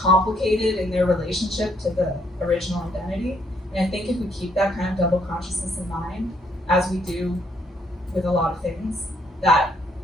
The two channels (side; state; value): both; normal; correlation 0.70